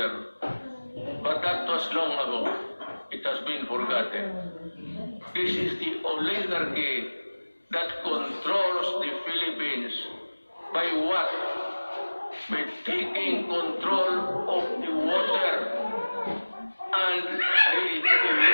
But that was long ago. It has been forgotten. This is the oligarchy that controls the Philippines. By what? By taking control of the water and the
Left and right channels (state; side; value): inverted; both; correlation -1.00